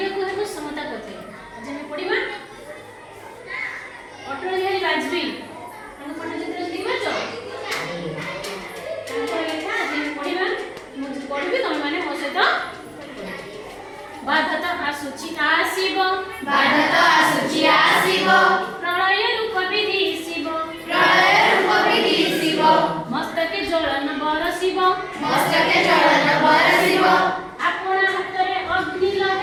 ହେବ ସମତା ପଥେ। ଆଜି ଆମେ ପଢ଼ିବା ଅଟଳ ବିହାରୀ ବାଜପେୟୀ ତାଙ୍କ ପଟ୍ଟଚିତ୍ର ଦେଖିପାରୁଛ? ତାଙ୍କର ଲେଖା ଆଜି ଆମେ ପଢ଼ିବା। ମୁଁ ପଢ଼ିବି, ତମେମାନେ ମୋ ସହିତ ବାଧା ତ ଆସୁଛି ଆସିବ, ବାଧା ତ ଆସୁଛି ଆସିବ, ପ୍ରଳୟ ରୂପ ବିଦିଶିବ, ପ୍ରଳୟ ରୂପ ବିଦିଶିବ, ମସ୍ତକେ ଜ୍ୱଳନ ବରସିବ, ମସ୍ତକେ ଜ୍ୱଳନ ବରସିବ, ଆପଣା ହାତରେ ଅଗ୍ନି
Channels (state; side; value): identical; both; correlation 1.00